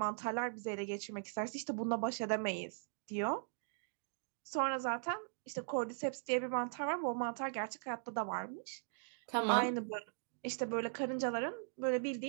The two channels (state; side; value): silent; left; digital silence